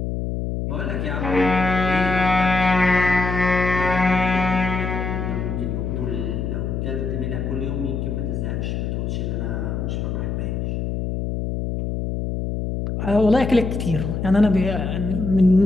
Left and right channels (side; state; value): left; noise; hum, 2 dB below the sound